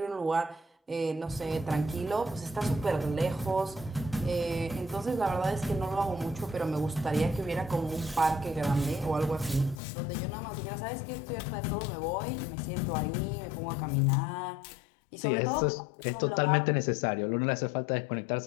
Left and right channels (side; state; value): right; drops out; at 9.8 s